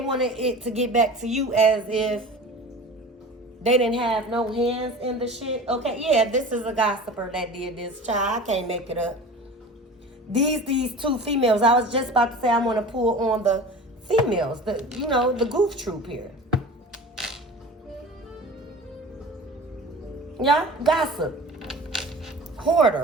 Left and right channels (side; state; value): both; normal; correlation 0.37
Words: wanted it to get back to you as if they didn't have no hands in the shit. Okay, yeah, this is a gossiper that did this, child. I can't make it up. These two females, I was just about to say I want to pull on the females, the goof troop here. Yeah, gossip.